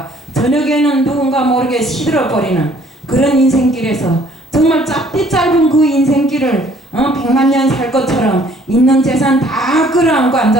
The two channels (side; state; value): both; normal; correlation 0.59